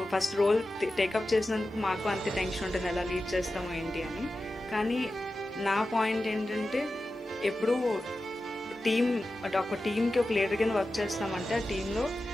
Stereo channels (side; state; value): both; normal; correlation 0.93